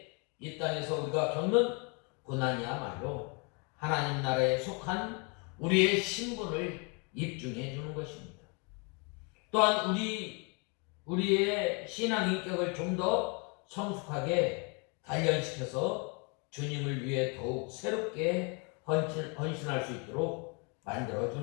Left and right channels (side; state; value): right; quieter; 33.6 dB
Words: 이 땅에서 우리가 겪는 고난이야말로 하나님 나라에 속한 우리의 신분을 입증해 주는 것입니다. 또한 우리의 신앙 인격을 좀 더 성숙하게 단련시켜서 주님을 위해 더욱 새롭게 헌신할 수 있도록 만들어